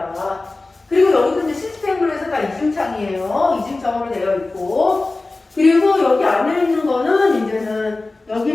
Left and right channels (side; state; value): right; quieter; 3.3 dB